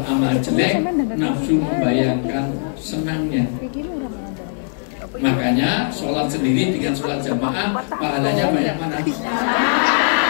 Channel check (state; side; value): silent; right; digital silence